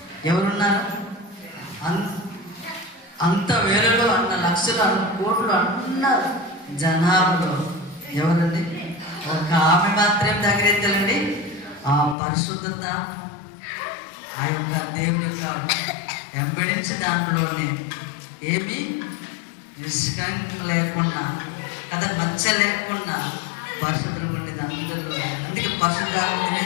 ఎవరున్నారు? అంత వేలలో అన్న లక్షలు అన్న కోట్లు అన్న జనాభాలో ఎవరండి? ఒక ఆమె మాత్రం దగ్గరెత్తాలండి. ఆ పరిశుద్ధత ఆ యొక్క దేవుని యొక్క వెంబడించి దాంట్లోనే ఏమీ నిష్కంకం లేకుండా కదా, మచ్చ లేకుండా పరిశుభ్రంగా ఉండేది అందరిలో. అందుకే పరిశుద్ధాత్మ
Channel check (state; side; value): drops out; right; at 12.2 s